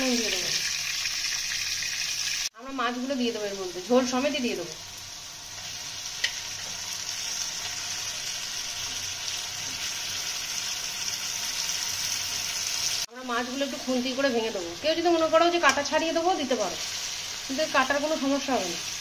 দিয়ে দেবো। আমরা মাছগুলো দিয়ে দেবো, এর মধ্যে ঝোল সমেতই দিয়ে দেবো। আমরা মাছগুলো একটু খুন্তি করে ভেঙে দেবো। কেউ যদি মনে করো যে কাটা ছাড়িয়ে দেবো, দিতে পারো, কিন্তু কাটার কোনো সমস্যা হবে না।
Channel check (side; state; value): both; identical; correlation 1.00